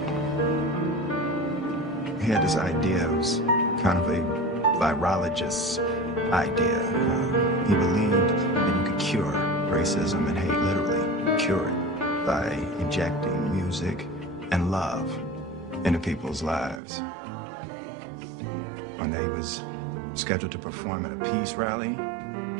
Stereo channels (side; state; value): left; drops out; at 16.8 s